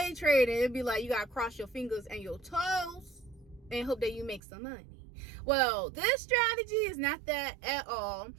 trading, it'd be like you gotta cross your fingers and your toes and hope that you make some money. Well, this strategy is not that at all.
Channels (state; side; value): drops out; left; at 4.4 s